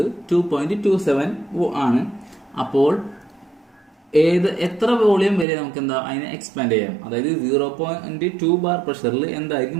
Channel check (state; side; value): drops out; left; at 5.5 s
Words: 2.27 ആണ്. അപ്പോൾ എത്ര വോളിയം വരെ നമുക്ക് എന്താ അതിനെ എക്സ്പാൻഡ് ചെയ്യാം. അതായത് 0.2 ബാർ പ്രഷറിൽ എന്തായിരിക്കും